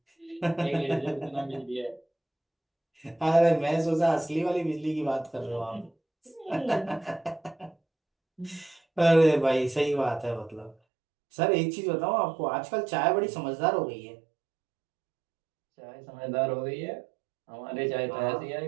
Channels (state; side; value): drops out; left; at 10.8 s